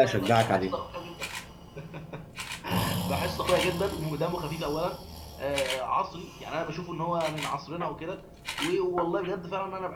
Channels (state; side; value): identical; both; correlation 1.00